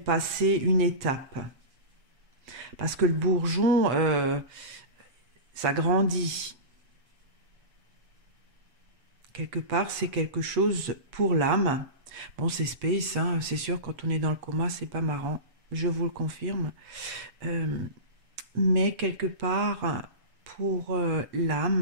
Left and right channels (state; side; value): late; left; 7.9 ms